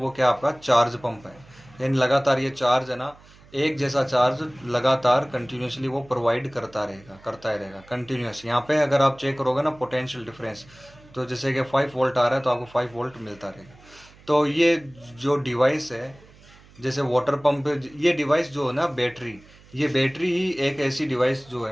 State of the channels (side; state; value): right; noise; hum, 25 dB below the sound